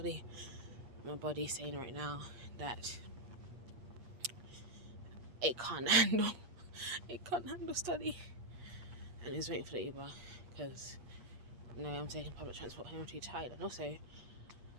My body is saying right now that it can't handle study, and it's waiting for the Uber because I'm taking public transport home. I'm too tired, and also,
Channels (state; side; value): late; left; 8.3 ms